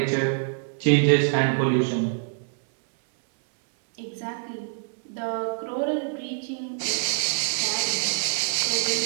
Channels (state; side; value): silent; left; 62 dB below the other